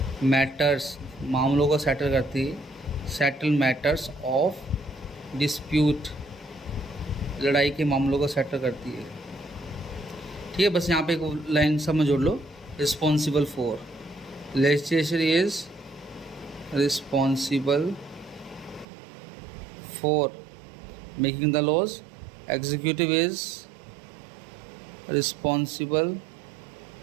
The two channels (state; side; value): drops out; left; at 18.9 s